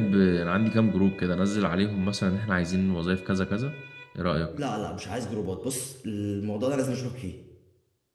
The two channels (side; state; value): both; identical; correlation 1.00